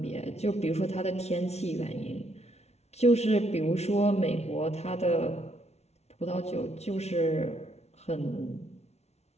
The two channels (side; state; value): right; late; 0.31 ms